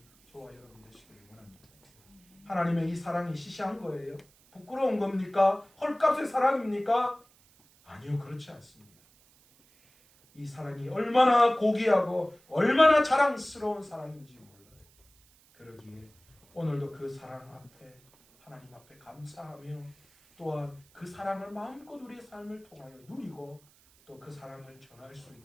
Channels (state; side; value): noise; right; hiss, 30 dB below the sound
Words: 저와 여러분 되시기를 원합니다. 하나님의 이 사랑이 시시한 거예요? 부끄러운 겁니까? 헐값의 사랑입니까? 아니요, 그렇지 않습니다. 이 사랑이 얼마나 고귀하고 얼마나 자랑스러운 사랑인지 몰라요. 그러기에 오늘도 그 사랑 앞에 하나님 앞에 감사하며 또한 그 사랑을 마음껏 우리의 삶을 통하여 누리고 또 그 사랑을 전할 수